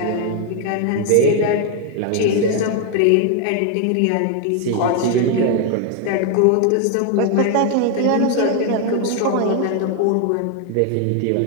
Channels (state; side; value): different; both; correlation 0.01